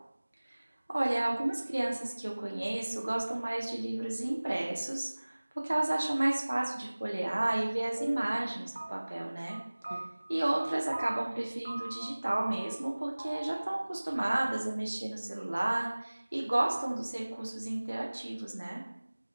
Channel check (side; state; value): both; inverted; correlation -1.00